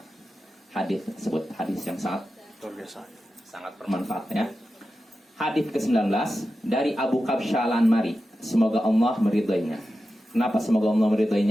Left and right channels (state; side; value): normal; both; correlation 0.92